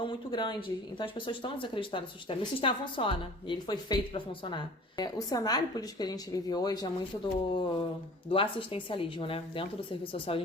muito grande. Então as pessoas estão desacreditando no sistema. E o sistema funciona, e ele foi feito para funcionar. O cenário político que a gente vive hoje é muito do assistencialismo, né? Dentro do serviço social a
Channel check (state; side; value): normal; both; correlation 0.45